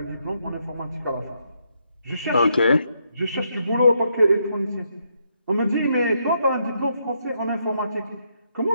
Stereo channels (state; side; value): inverted; both; correlation -0.77